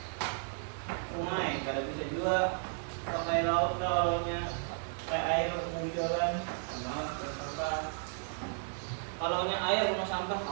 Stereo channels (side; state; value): left; silent; 55 dB below the other